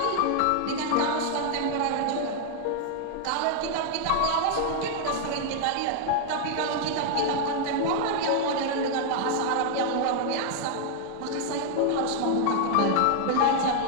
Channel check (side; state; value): both; different; correlation 0.00